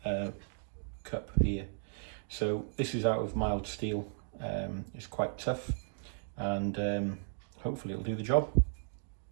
cup here. So this is out of mild steel. It's quite tough, and hopefully it'll do the job.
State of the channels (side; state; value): left; silent; digital silence